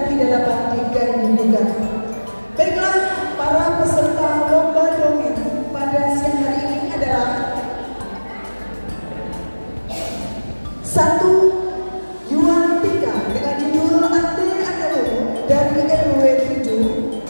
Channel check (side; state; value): both; inverted; correlation -1.00